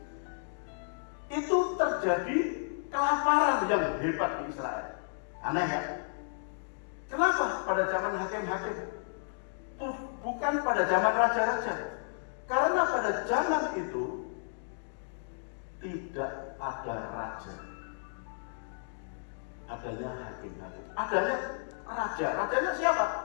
itu terjadi kelaparan yang hebat di Israel. Aneh ya? Kenapa pada zaman hakim-hakim? Bukan pada zaman raja-raja. Karena pada zaman itu tidak ada raja. Adanya hakim-hakim. Adanya raja. Rajanya siapa?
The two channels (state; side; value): silent; right; digital silence